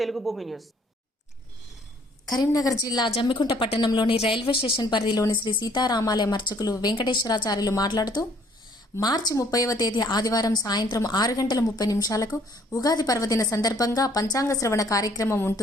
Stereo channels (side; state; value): both; normal; correlation 0.61